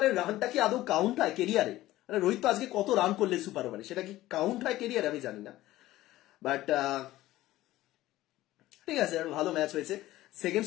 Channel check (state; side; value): quieter; right; 16.0 dB